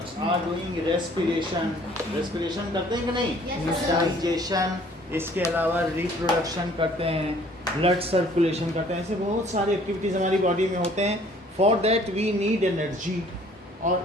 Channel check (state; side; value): normal; both; correlation 0.56